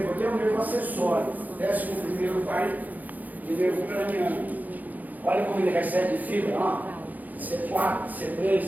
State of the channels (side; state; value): left; late; 0.081 ms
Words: aqui é um nervo acessório, 11º par de nervo craniano. Olha como ele recebe fibra, ó. C4,